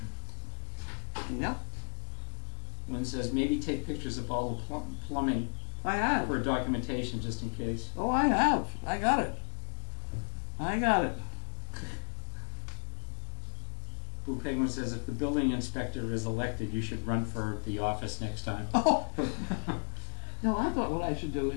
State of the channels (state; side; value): silent; right; 55 dB below the other